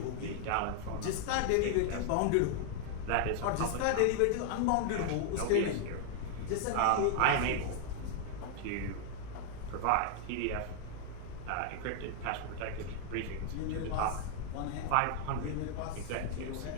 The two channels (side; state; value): both; different; correlation 0.00